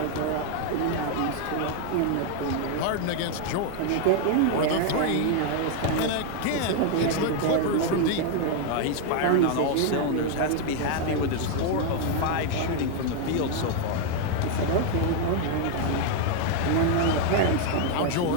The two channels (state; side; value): different; both; correlation 0.00